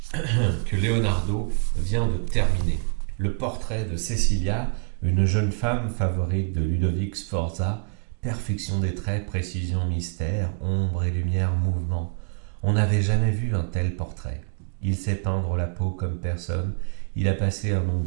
que Leonardo vient de terminer. Le portrait de Cecilia, une jeune femme favorite de Ludovic Sforza, perfection des traits, précision, mystère, ombre et lumière, mouvement. On n'avait jamais vu un tel portrait. Il sait peindre la peau comme personne. Il a passé un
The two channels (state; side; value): quieter; left; 34.9 dB